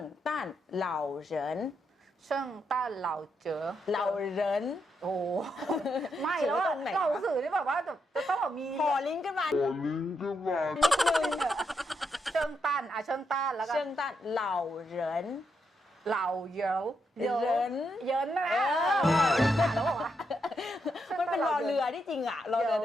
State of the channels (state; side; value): normal; both; correlation 0.81